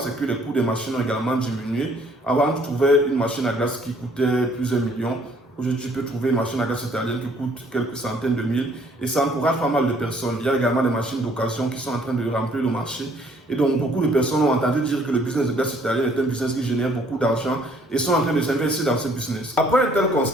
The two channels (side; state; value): both; normal; correlation 0.62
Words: c'est que les coûts des machines ont également diminué. Avant, tu trouvais une machine à glace qui coûtait plusieurs millions. Aujourd'hui, tu peux trouver une machine à glace italienne qui coûte quelques centaines de mille et ça encourage pas mal de personnes. Il y a également des machines d'occasion qui sont en train de remplir le marché. Et donc, beaucoup de personnes ont entendu dire que le business de glace italienne est un business qui génère beaucoup d'argent et sont en train de s'investir dans ce business. Après un tel